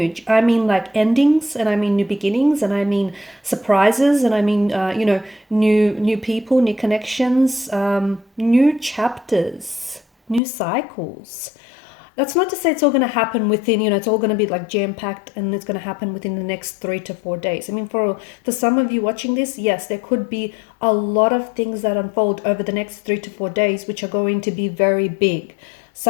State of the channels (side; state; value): right; drops out; at 10.4 s